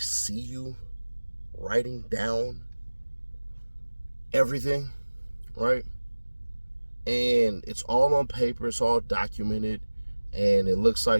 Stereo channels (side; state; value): both; inverted; correlation -1.00